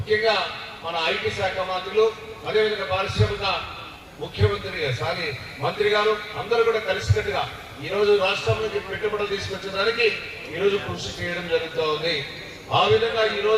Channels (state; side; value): identical; both; correlation 1.00